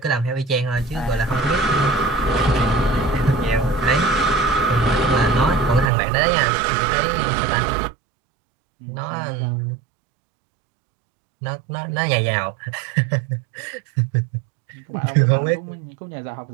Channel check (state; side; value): drops out; left; at 5.9 s